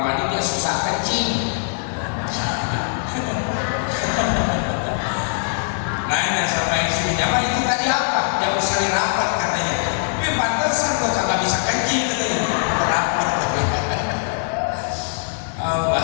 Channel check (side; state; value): right; silent; digital silence